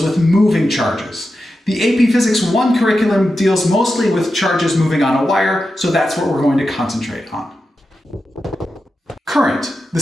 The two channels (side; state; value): both; normal; correlation 0.90